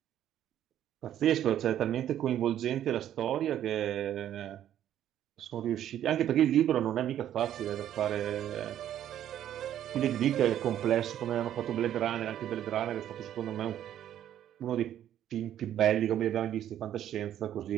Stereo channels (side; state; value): left; quieter; 11.1 dB